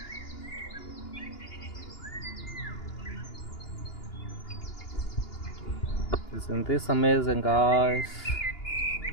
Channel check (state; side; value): late; right; 2.9 ms